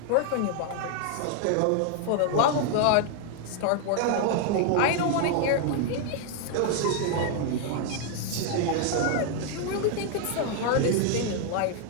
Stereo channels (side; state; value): both; different; correlation 0.00